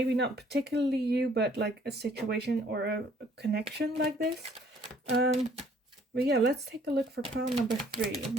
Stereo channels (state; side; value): normal; both; correlation 0.60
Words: not particularly you, but like a situation or a connection like this. But yeah, let's take a look for pile number 3.